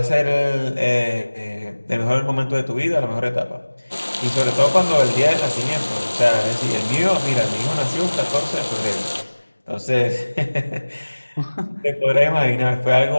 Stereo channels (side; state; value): both; inverted; correlation -1.00